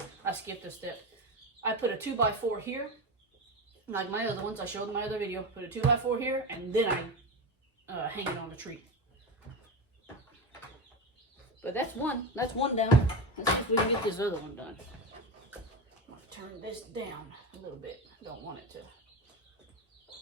I skipped a step. I put a 2x4 here. Like my other ones, I showed in my other video. Put a 2x4 here, and then I hang it on the tree. But that's one down. Let's see if we can get this other one done. I'm gonna turn this down a little bit. Don't want it to.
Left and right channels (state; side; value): normal; both; correlation 0.20